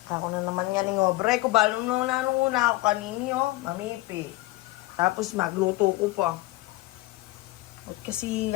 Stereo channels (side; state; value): right; quieter; 19.8 dB